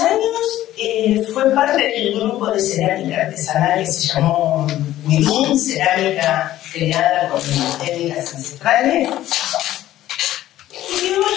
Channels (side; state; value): right; quieter; 13.8 dB